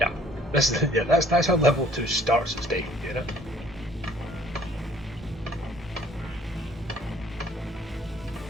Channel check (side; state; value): both; normal; correlation 0.57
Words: yeah, that's how level 2 starts its day, you know.